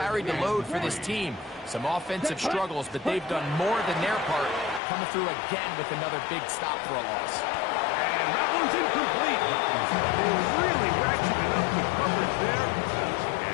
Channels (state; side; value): drops out; right; at 4.8 s